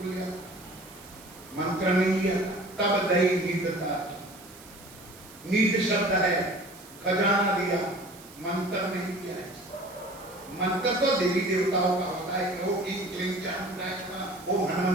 लिया, मंत्र नहीं लिया। तब दई नींदता, नींद शब्द है, खजाना दिया, मंत्र नहीं दिया है। मंत्र तो देवी देवताओं का होता है, वो की वो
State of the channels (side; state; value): right; noise; hiss, 20 dB below the sound